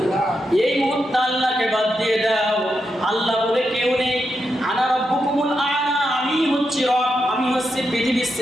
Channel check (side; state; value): both; normal; correlation 0.85